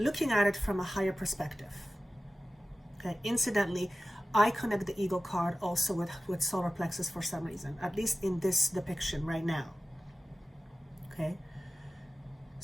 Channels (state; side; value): normal; both; correlation 0.95